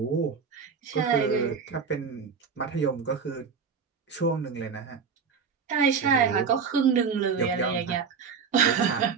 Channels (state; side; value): quieter; left; 6.0 dB